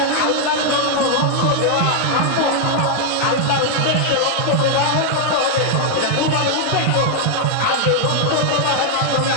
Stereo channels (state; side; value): different; both; correlation 0.00